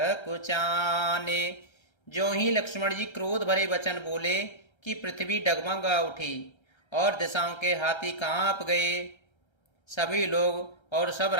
जो ही लक्ष्मण जी क्रोध भरे वचन बोले कि पृथ्वी डगमगा उठी और दिशाओं के हाथी कांप गए। सभी लोग और सब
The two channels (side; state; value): right; late; 1.3 ms